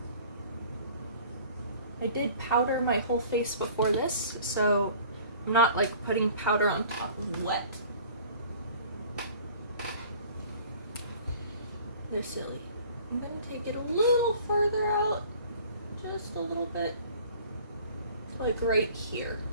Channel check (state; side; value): inverted; both; correlation -0.49